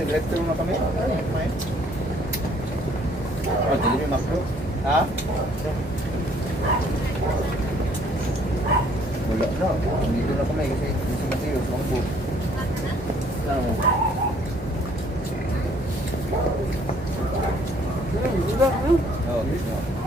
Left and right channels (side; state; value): both; normal; correlation 0.61